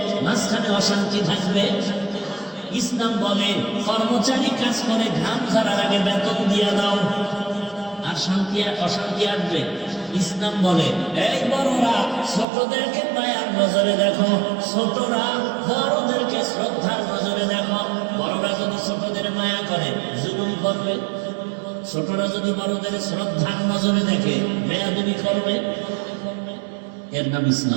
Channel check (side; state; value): left; drops out; at 12.5 s